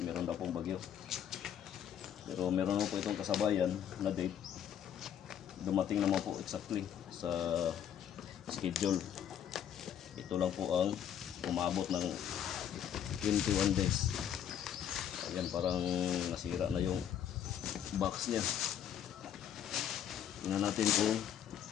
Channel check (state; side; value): quieter; right; 9.5 dB